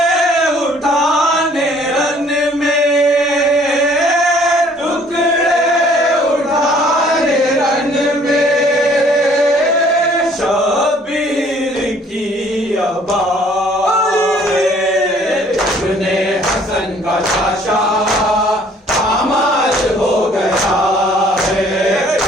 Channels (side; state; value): both; normal; correlation 0.58